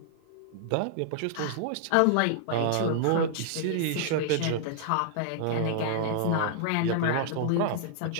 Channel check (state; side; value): different; both; correlation -0.01